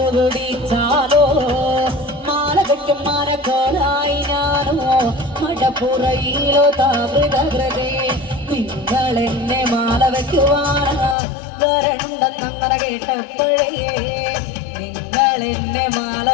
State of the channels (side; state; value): right; drops out; at 11.2 s